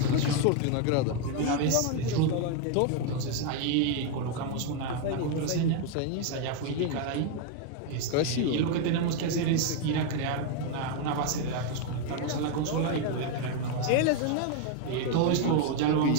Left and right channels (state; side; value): different; both; correlation 0.01